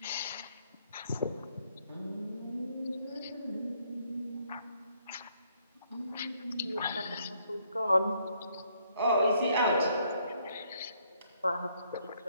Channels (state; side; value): inverted; both; correlation -0.70